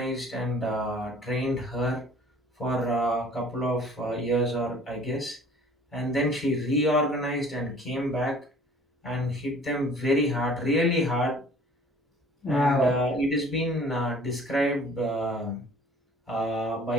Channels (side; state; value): both; normal; correlation 0.51